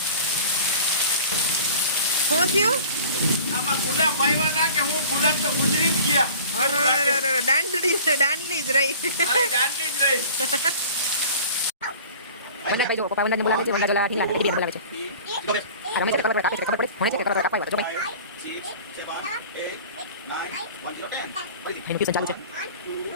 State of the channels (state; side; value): inverted; both; correlation -0.44